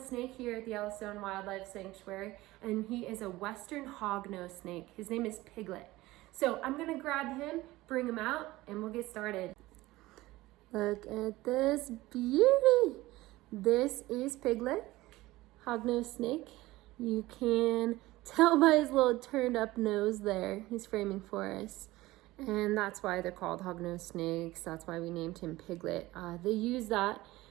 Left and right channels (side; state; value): left; quieter; 18.4 dB